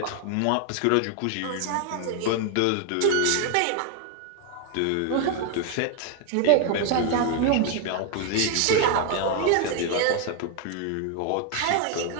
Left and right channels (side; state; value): both; different; correlation 0.00